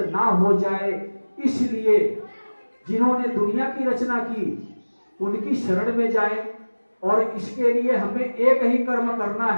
ना हो जाए, इसलिए जिन्होंने दुनिया की रचना की उनकी शरण में जाएं। और इसके लिए हमें एक ही कर्म करना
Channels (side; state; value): both; inverted; correlation -1.00